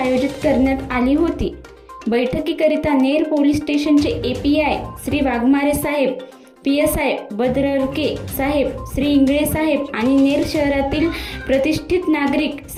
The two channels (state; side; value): identical; both; correlation 1.00